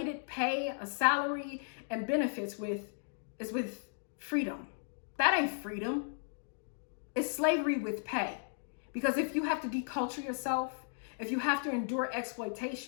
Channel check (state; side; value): silent; right; digital silence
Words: pay, a salary, and benefits with, is with freedom. That ain't freedom. It's slavery with pay. Because if you have to deculture yourself, if you have to endure